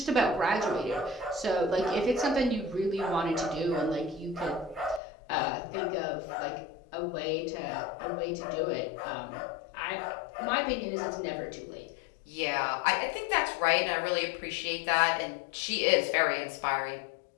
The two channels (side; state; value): right; drops out; at 5.0 s